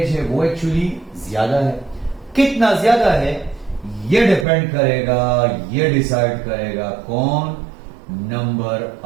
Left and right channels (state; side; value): drops out; left; at 4.5 s